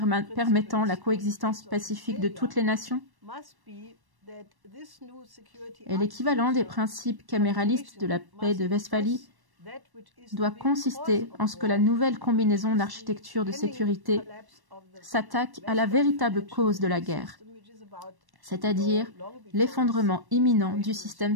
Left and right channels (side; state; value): left; late; 1.1 ms